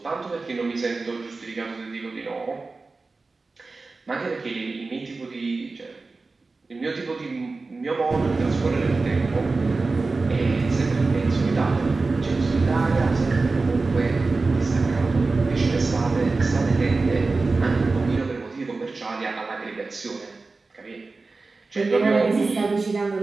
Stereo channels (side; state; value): left; quieter; 3.8 dB